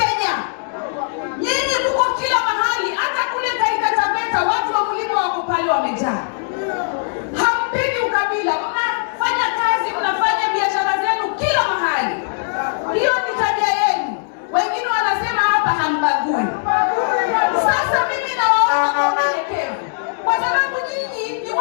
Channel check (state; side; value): silent; right; digital silence